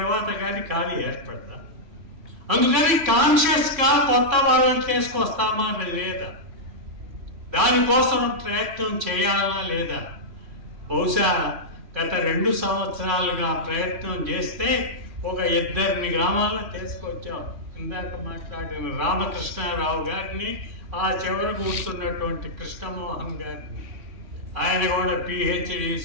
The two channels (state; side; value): late; left; 3.6 ms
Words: కానీ ఖాళీ ఏర్పడతా. అందుకని కాన్షియస్గా కొత్త వాళ్ళని తీసుకొస్తామా లేదా, దానికోసం ప్రయత్నం చేయాలా లేదా? బహుశా గత 2 సంవత్సరాలుగా ప్రయత్నం చేస్తే ఒక 2 గ్రామాల్లో తీసుకొచ్చాం. ఇందాక మాట్లాడిన రామకృష్ణారావు గారిని, ఆ చివర కూర్చున్నటువంటి కృష్ణమోహన్ గారిని, ఆయన కూడా PhD